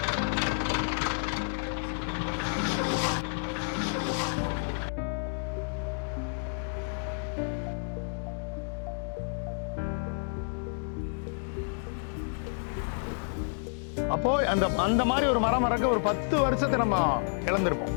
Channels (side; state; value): right; silent; digital silence